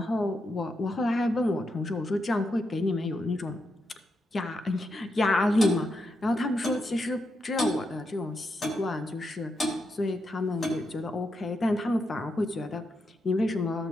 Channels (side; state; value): both; normal; correlation 0.83